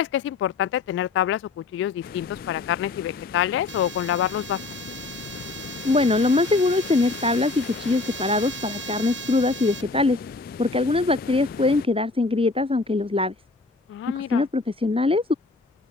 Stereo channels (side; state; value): right; quieter; 3.6 dB